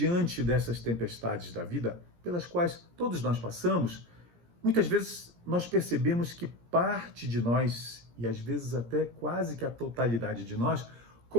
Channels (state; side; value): late; left; 17 ms